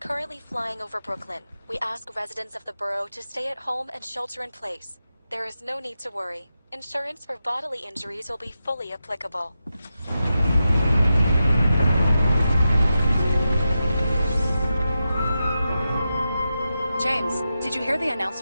flying over Brooklyn. We ask residents of the borough to stay at home and shelter in place. There is no need to worry. Insurance for bodily injuries will be fully applicable. James, did you hear the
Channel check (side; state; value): both; inverted; correlation -0.90